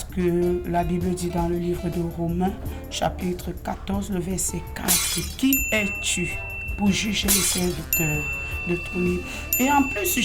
que la Bible dit dans le livre de Romains, chapitre 14, le verset 4, « Qui es-tu pour juger les serviteurs d'autrui ?» Et en plus,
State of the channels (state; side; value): identical; both; correlation 1.00